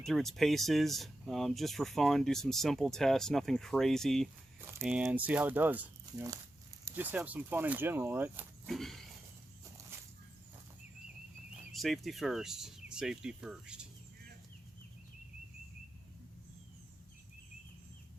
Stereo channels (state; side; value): normal; both; correlation 0.90